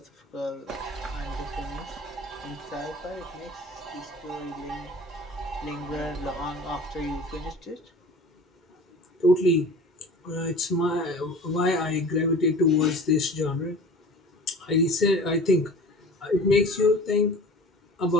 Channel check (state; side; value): normal; both; correlation 0.41